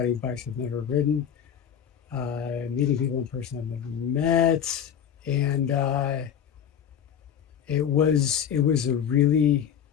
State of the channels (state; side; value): quieter; right; 8.7 dB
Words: bikes I've never ridden, meeting people in person I've never met, and it